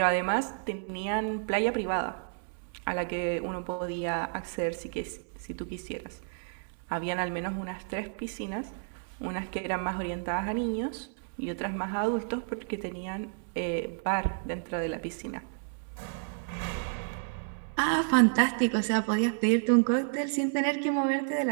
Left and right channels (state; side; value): silent; left; digital silence